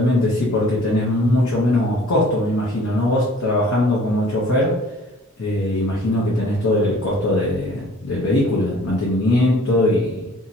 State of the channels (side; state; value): both; normal; correlation 0.52